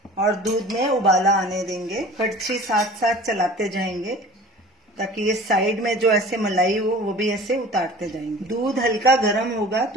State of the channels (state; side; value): normal; both; correlation 0.43